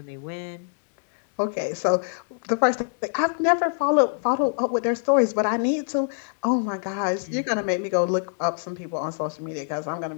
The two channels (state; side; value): silent; right; digital silence